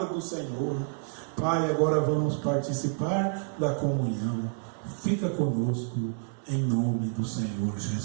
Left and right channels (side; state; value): left; silent; 59 dB below the other